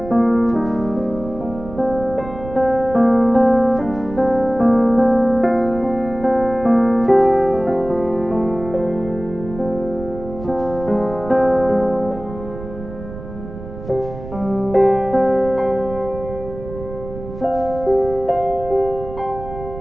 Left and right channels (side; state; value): right; noise; rumble, 12 dB below the sound